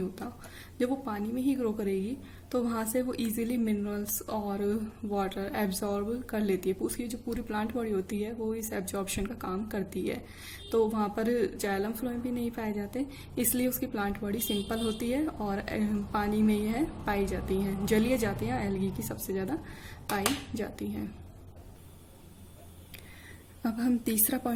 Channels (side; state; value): both; identical; correlation 1.00